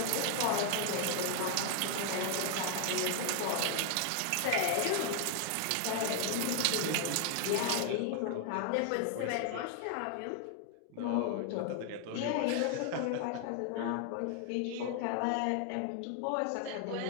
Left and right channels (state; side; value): different; both; correlation 0.00